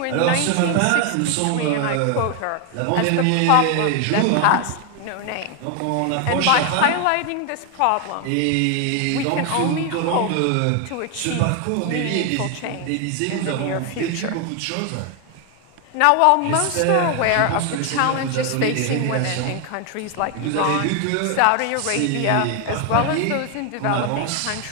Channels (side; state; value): both; different; correlation 0.01